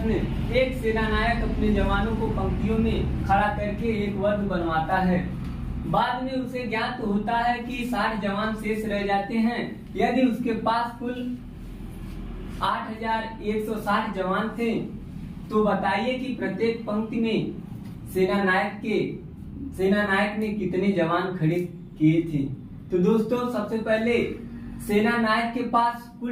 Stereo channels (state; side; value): identical; both; correlation 1.00